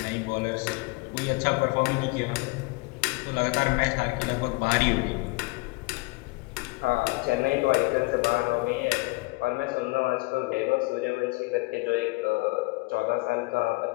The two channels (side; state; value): right; quieter; 25.3 dB